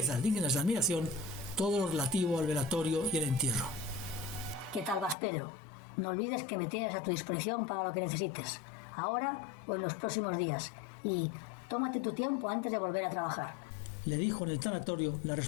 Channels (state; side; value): drops out; right; at 5.2 s